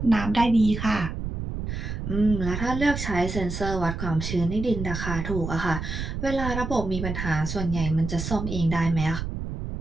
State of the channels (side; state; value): right; noise; rumble, 5 dB below the sound